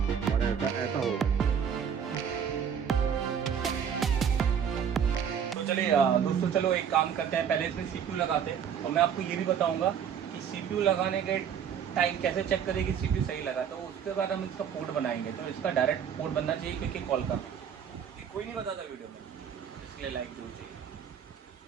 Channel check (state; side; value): quieter; left; 8.0 dB